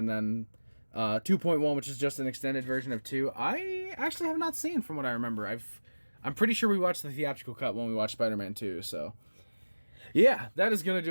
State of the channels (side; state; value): both; inverted; correlation -1.00